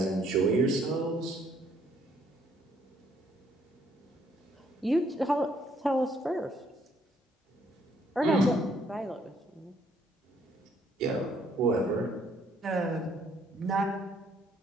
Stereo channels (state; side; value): normal; both; correlation 0.67